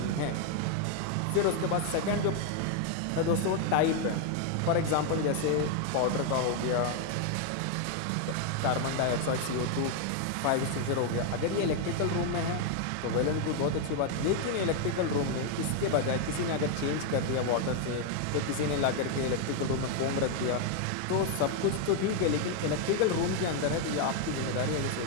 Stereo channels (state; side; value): different; both; correlation 0.01